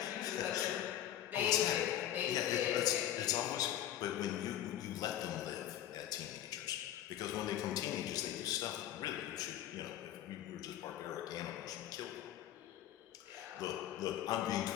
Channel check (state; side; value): quieter; right; 11.9 dB